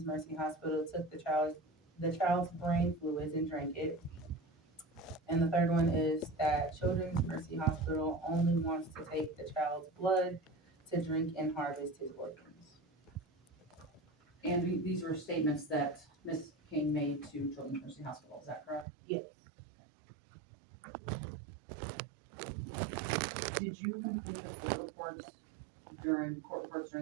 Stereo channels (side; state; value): left; drops out; at 18.9 s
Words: Mercy Hospital took the child's brain fluids and drank it. And the third one is that Children's Mercy Hospital only wants to take the child's blood to drink and harvest his organs. And these were statements that Ms. King made to Children's Mercy Hospital, is that correct? Yes, Did you complete the court reports during